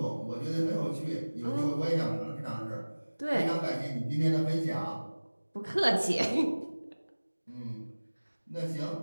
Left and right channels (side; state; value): both; inverted; correlation -1.00